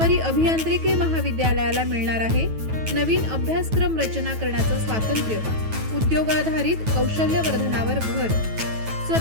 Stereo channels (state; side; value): late; left; 9.2 ms